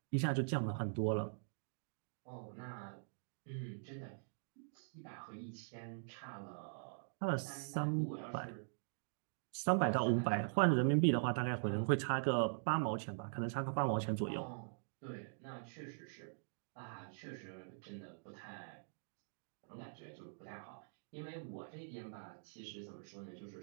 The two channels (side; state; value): left; silent; digital silence